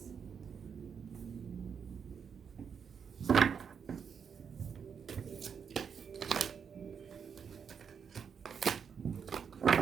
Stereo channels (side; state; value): left; quieter; 6.8 dB